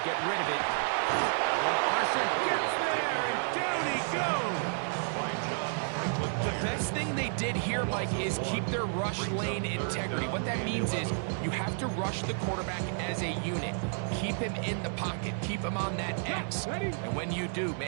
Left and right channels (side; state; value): left; silent; 57 dB below the other